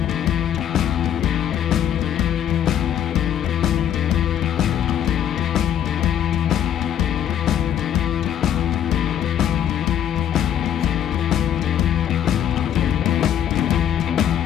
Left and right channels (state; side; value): quieter; right; 10.1 dB